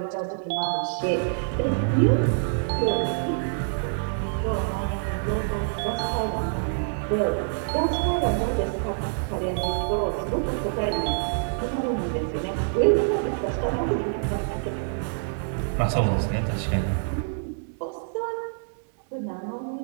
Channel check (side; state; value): left; silent; 61 dB below the other